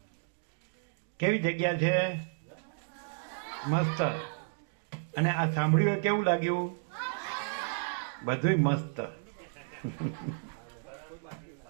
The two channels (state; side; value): silent; left; digital silence